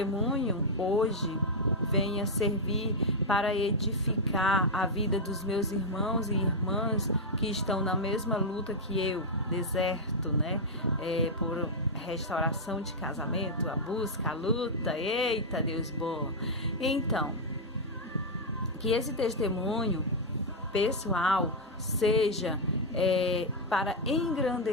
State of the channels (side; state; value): both; normal; correlation -0.03